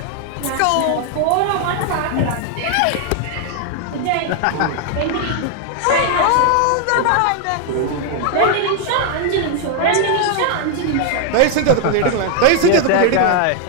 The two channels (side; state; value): both; different; correlation 0.00